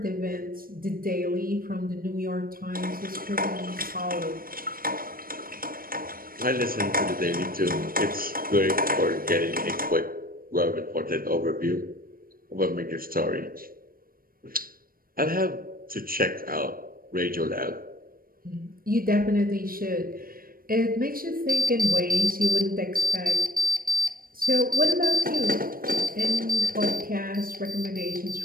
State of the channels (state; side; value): late; left; 0.42 ms